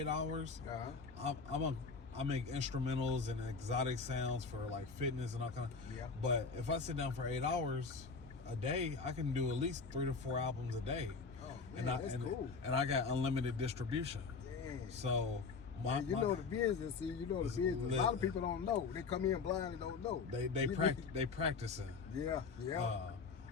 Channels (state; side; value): quieter; right; 4.8 dB